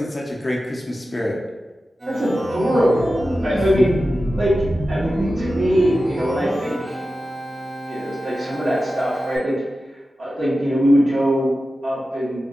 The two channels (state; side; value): normal; both; correlation 0.93